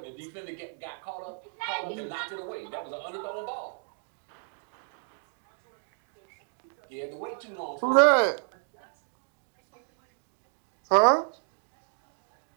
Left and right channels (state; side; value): silent; left; 56 dB below the other